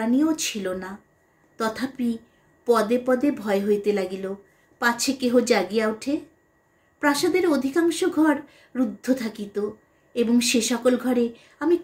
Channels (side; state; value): both; identical; correlation 1.00